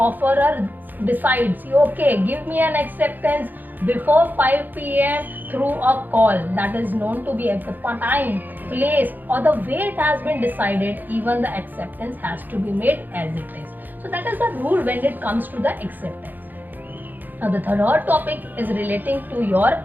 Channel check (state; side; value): late; left; 0.087 ms